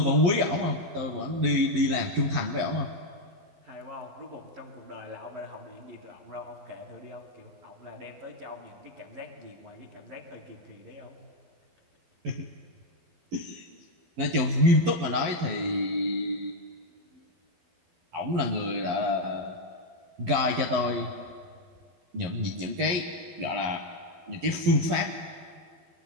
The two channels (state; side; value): late; left; 11 ms